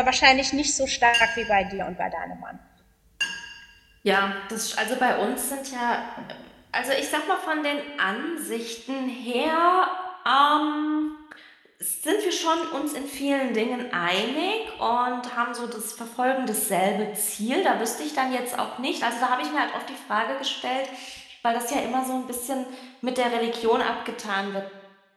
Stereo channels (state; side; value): identical; both; correlation 1.00